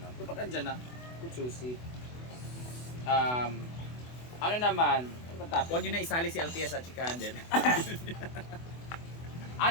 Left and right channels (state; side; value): late; right; 24 ms